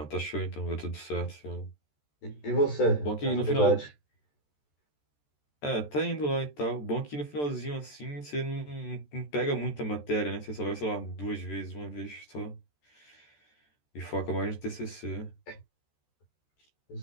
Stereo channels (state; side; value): late; right; 14 ms